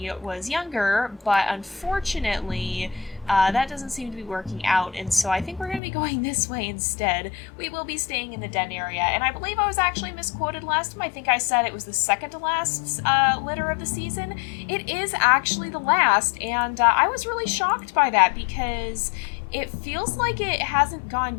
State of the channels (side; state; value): right; drops out; at 5.8 s